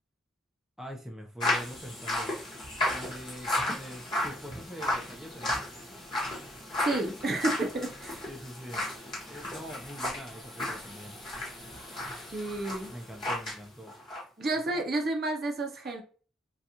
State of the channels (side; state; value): both; normal; correlation 0.66